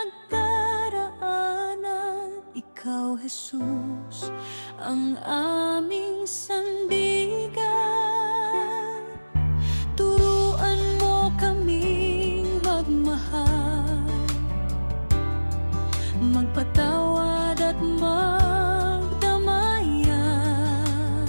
ikaw, Jesus, ang aming sandigan. Turuan mo kaming magmahal, magpatawad at magdamayan.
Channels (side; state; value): both; inverted; correlation -1.00